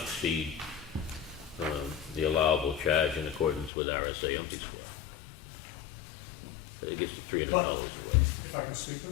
the allowable charge in accordance with RSA umpty square? I think it's $300. But if if I can speak to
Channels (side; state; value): right; drops out; at 3.7 s